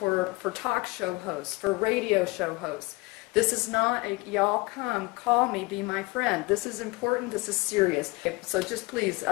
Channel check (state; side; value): quieter; right; 24.4 dB